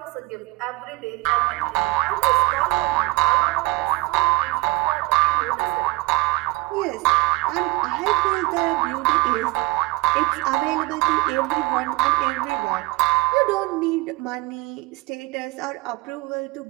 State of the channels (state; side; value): quieter; left; 21.4 dB